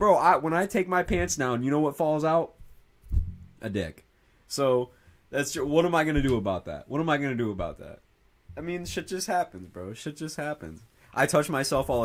when I take my pants down, you know what falls out? A dick. So, what am I going to do about that? I mean, shit just happens, bro. Shit just happens. I touch myself all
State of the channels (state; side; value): identical; both; correlation 1.00